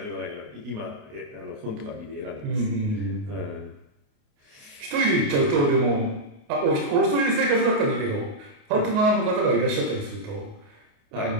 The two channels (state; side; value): late; left; 28 ms